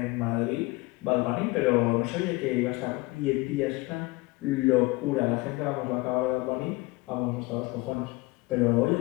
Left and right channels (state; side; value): quieter; right; 23.0 dB